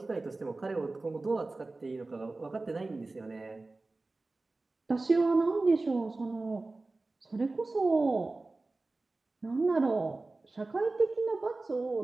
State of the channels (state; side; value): quieter; left; 3.3 dB